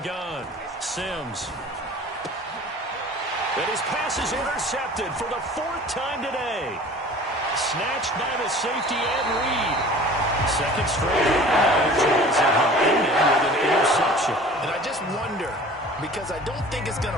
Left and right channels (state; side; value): normal; both; correlation 0.44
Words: Sims. And his pass is intercepted for the 4th time today. Snatched by the safety Ed Reed. Second straight with an interception. And I just wonder, because I don't think it's going